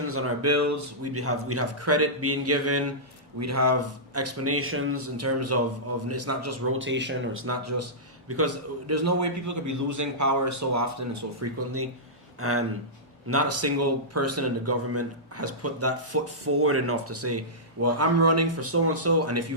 on our bills. We'd have credit being given. We'd have explanations in terms of it's not just rotation, or it's not just because there's no way people could be losing power so often and so frequently, and not a single person in the government has put that foot forward enough to say, well, I'm running for so and so, and if you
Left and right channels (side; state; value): both; normal; correlation -0.15